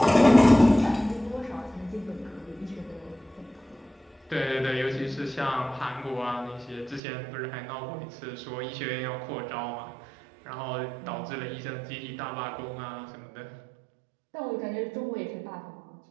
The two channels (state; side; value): drops out; left; at 7.0 s